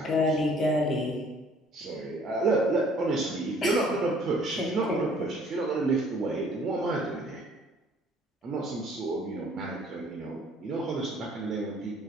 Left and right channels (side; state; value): both; normal; correlation 0.57